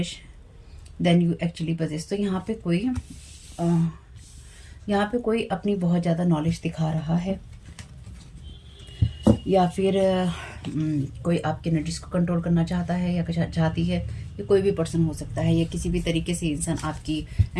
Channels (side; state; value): both; identical; correlation 1.00